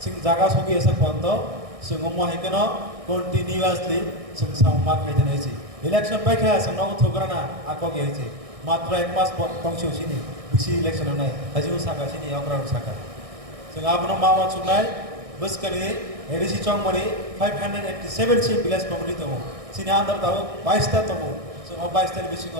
jaga sogi esa pont sing omo haikeno continuously sing samma khai naisi election pai kha sing no thograna akogi haisi matra ek mas pongsiu sini bisi election nai hajiu saka sini okra saka sing abun mawa chunai buskani ADC चंग मरी 587 सी विलेज कम्युनिटी तमो सिने अंदर ताव 22 ता तमो सो 22 ता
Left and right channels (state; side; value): late; left; 1.6 ms